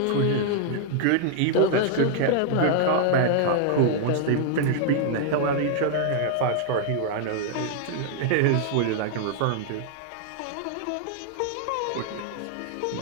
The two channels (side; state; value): both; different; correlation 0.00